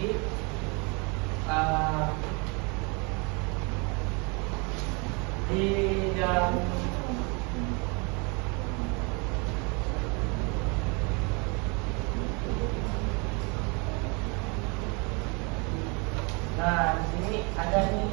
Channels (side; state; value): left; quieter; 31.4 dB